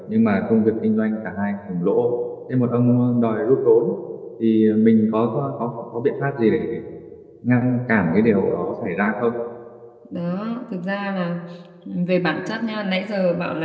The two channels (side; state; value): both; identical; correlation 1.00